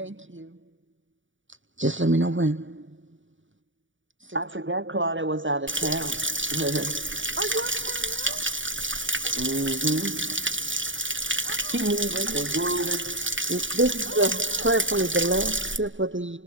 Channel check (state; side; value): late; left; 0.56 ms